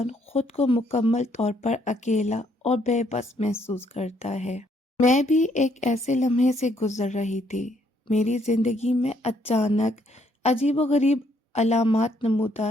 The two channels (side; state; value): both; normal; correlation 0.69